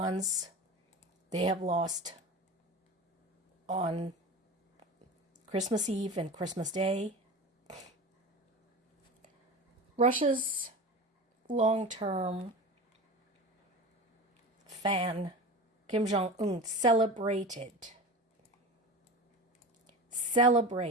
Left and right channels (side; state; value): both; normal; correlation 0.31